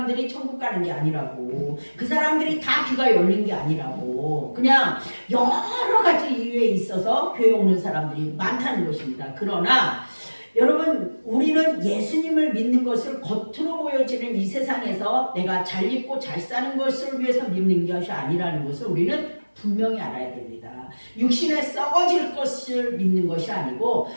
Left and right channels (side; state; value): both; inverted; correlation -1.00